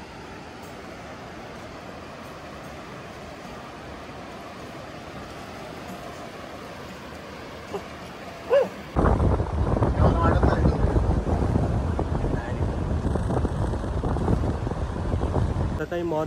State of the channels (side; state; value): both; identical; correlation 1.00